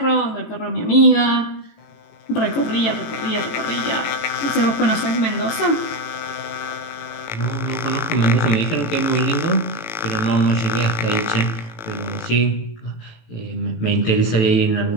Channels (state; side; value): late; right; 18 ms